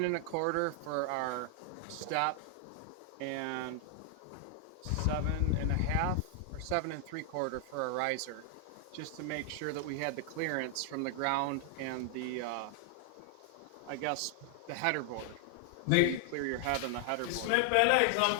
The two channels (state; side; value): different; both; correlation 0.00